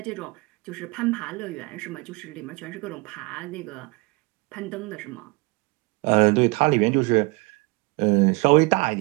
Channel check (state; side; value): quieter; left; 26.7 dB